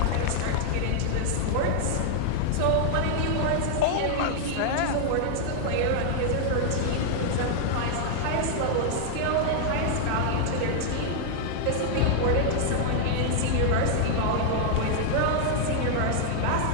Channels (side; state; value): both; different; correlation 0.00